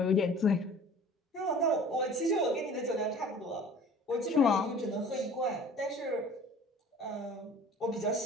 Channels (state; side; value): normal; both; correlation 0.46